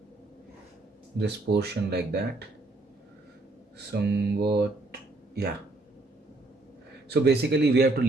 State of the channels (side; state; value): left; quieter; 3.0 dB